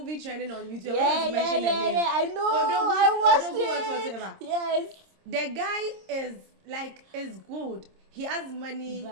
trending on YouTube. I'm going to mention the name. Yeah, I know. I watched it. Whatever. Yes. The guy is good. He has money.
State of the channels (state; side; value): late; left; 26 ms